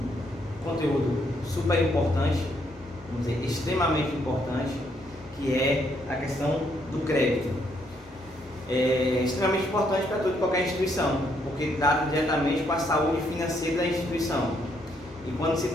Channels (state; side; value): normal; both; correlation 0.73